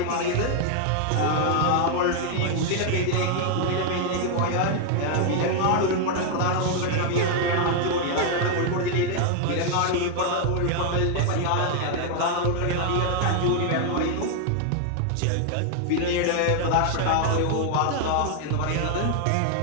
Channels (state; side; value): different; both; correlation 0.00